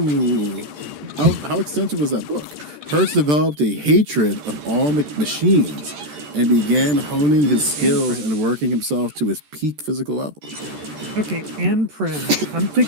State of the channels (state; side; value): late; left; 14 ms